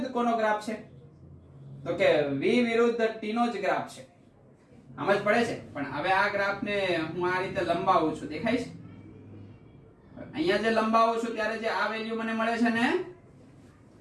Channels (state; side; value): identical; both; correlation 1.00